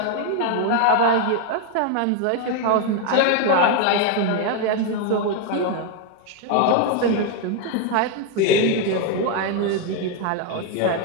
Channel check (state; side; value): different; both; correlation 0.01